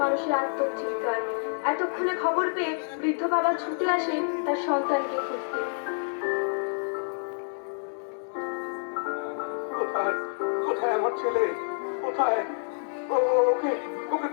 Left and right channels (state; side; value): silent; right; digital silence